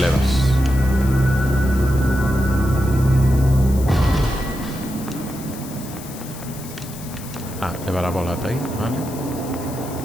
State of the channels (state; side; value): noise; left; hiss, 15 dB below the sound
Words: Ah, levar a bola ata aí, vale.